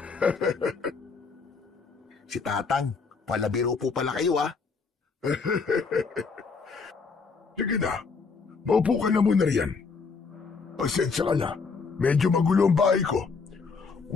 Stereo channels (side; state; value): right; quieter; 4.9 dB